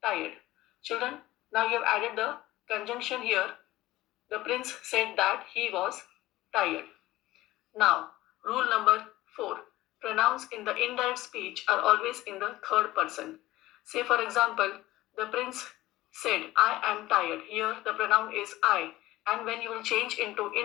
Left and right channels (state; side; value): quieter; right; 17.0 dB